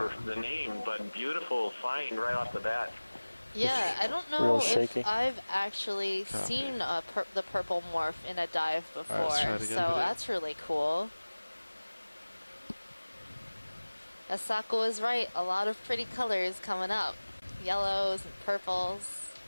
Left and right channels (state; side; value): inverted; both; correlation -1.00